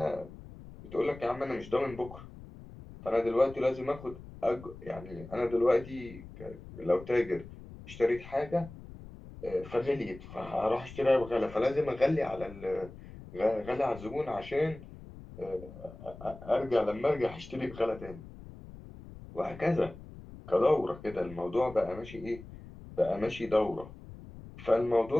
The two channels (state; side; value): noise; left; rumble, 16 dB below the sound